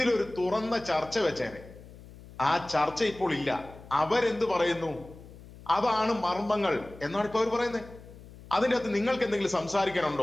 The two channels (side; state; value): left; noise; hum, 19 dB below the sound